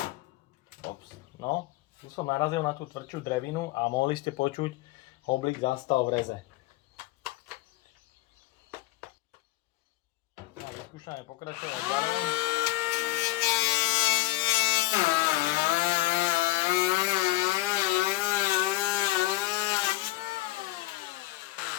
No, tu som narazil na tú tvrdšiu drevinu a mohli ste počuť, oblík zastal v reze. A vyskúšame pokračovať ďalej.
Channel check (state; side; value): quieter; right; 18.6 dB